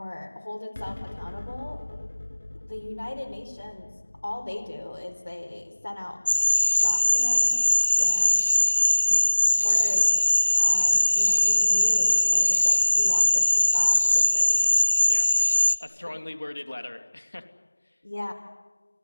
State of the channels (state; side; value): inverted; both; correlation -1.00